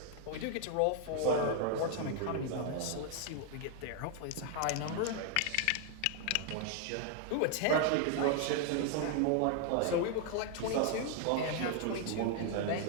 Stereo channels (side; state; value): both; different; correlation 0.00